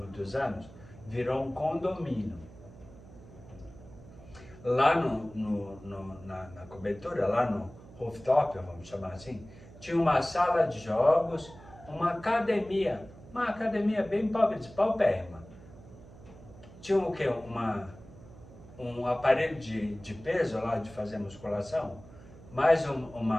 anos, virou um condomínio. Lá na cobertura, lá no rooftop, vamos chamar assim, tinha uma sala de jogos, uma academia bem pobre, de paupérrima. Tinha o quê? Um aparelho de peso lá, de fazer musculação, mais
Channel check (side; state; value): right; noise; hum, 19 dB below the sound